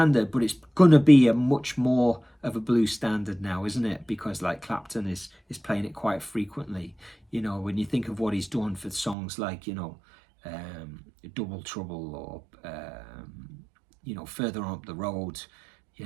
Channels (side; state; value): left; drops out; at 9.2 s